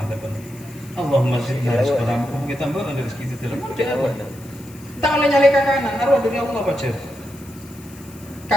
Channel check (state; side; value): noise; left; hiss, 22 dB below the sound